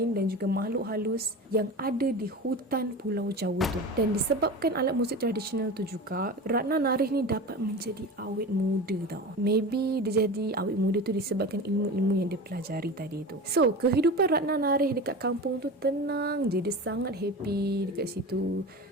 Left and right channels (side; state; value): both; normal; correlation 0.30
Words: dan juga makhluk halus yang ada di hutan Pulau Jawa tu. Dan disebabkan alat muzik tradisional tu juga, Ratna Narih ni dapat menjadi awet muda tau. Maybe dia jadi awet muda tu disebabkan ilmu-ilmu yang dia pelajari tadi tu. So, kehidupan Ratna Narih dekat kampung tu tenang je. Dia sangat happy dekat situ.